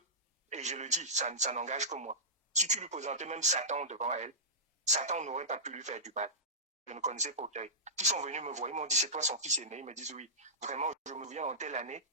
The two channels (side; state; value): both; normal; correlation -0.18